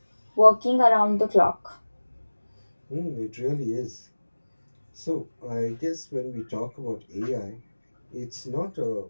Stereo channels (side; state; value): both; inverted; correlation -1.00